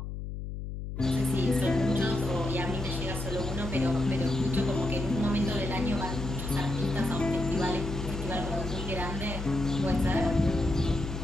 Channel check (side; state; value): left; noise; hum, 6 dB below the sound